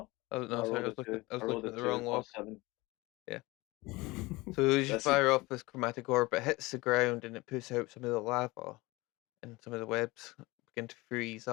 Oh no, sorry. I was looking at the wrong log. 7. Yeah. So as you That's fire off this chromatic orb, it hits the ground and it puts out some of the lava, and some of the webs begin to freeze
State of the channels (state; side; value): quieter; right; 22.0 dB